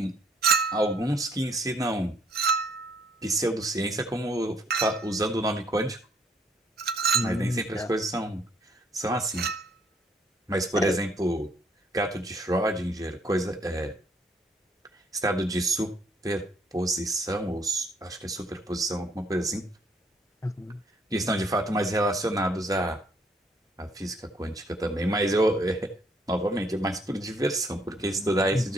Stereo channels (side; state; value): both; normal; correlation 0.65